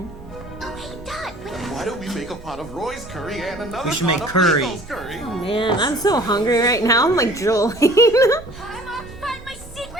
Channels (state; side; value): normal; both; correlation 0.49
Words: hey, Dot. Why don't we make a pot of Roy's curry and another We should pot make of curry. Rico's curry? Oh man, I'm so hungry right now. I'm like drooling. I'm off to find my